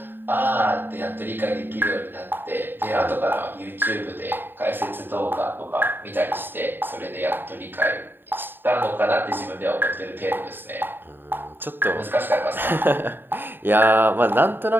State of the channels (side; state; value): left; late; 0.096 ms